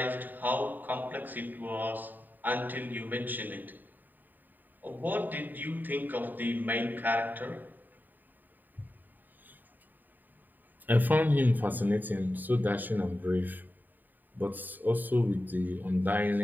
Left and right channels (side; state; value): left; late; 0.088 ms